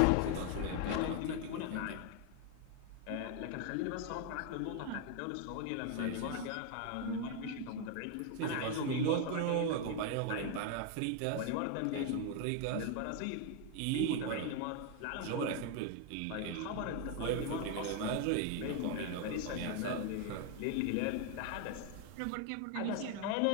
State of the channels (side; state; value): both; different; correlation 0.01